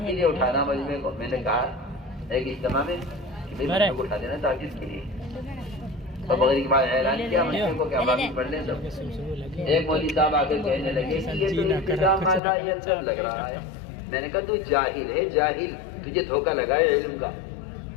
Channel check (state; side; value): drops out; right; at 12.4 s